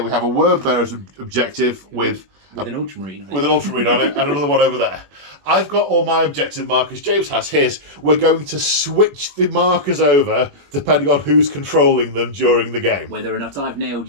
we have a Word Bearers objective with an Ultramarine on it. With an Ultramarine on it, and another one over there. I've got all my objective markers. James has his. We're going to switch the markers over depending on who's controlling them during the game. Whether or not I've nailed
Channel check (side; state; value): left; late; 21 ms